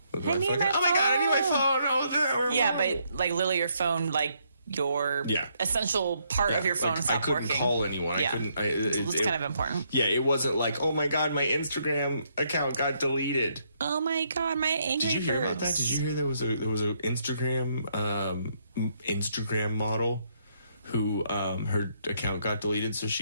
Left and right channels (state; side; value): inverted; both; correlation -0.73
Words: Oh my god, I need my phone. Oh, yeah, but like literally your phone, like your essential part of your phone stopped working. I couldn't call anyone. Yeah. It was kind of important. Yeah, it wasn't like, oh my god, my Instagram account got deleted. Oh my god, my angry Did you hear about that? Did you hear there was a Instagram model who her account got deleted, so